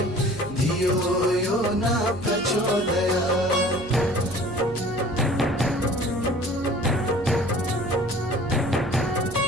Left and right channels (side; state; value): right; noise; hum, 16 dB below the sound